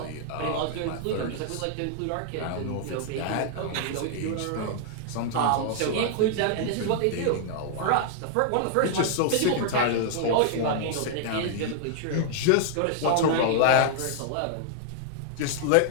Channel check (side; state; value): both; different; correlation -0.01